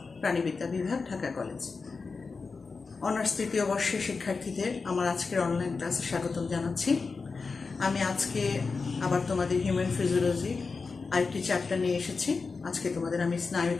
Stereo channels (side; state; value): right; quieter; 4.5 dB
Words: প্রাণীবিদ্যা বিভাগ, ঢাকা কলেজ। অনার্স তৃতীয় বর্ষের শিক্ষার্থীদের আমার আজকের অনলাইন ক্লাসে স্বাগতম জানাচ্ছি। আমি আজকে আবার তোমাদের হিউম্যান ফিজিওলজি আরেকটি চ্যাপ্টার নিয়ে এসেছি। আজকে তোমাদের আমি